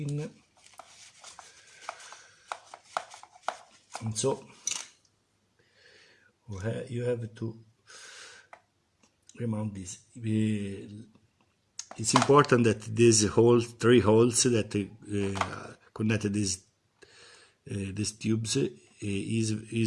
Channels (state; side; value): identical; both; correlation 1.00